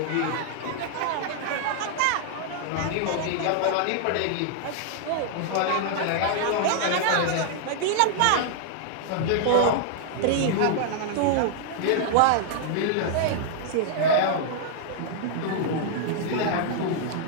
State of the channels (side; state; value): both; different; correlation -0.01